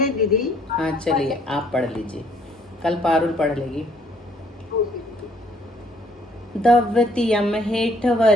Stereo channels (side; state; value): both; normal; correlation 0.63